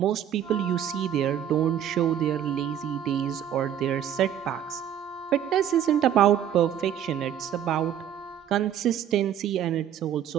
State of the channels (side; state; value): left; quieter; 10.0 dB